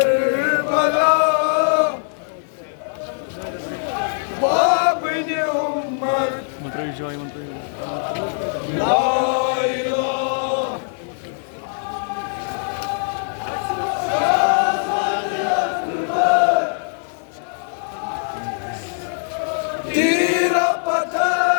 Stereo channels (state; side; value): silent; right; 65 dB below the other